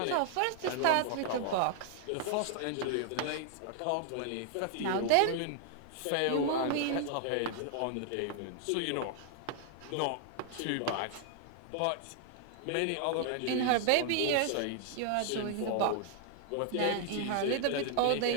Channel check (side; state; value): both; different; correlation 0.00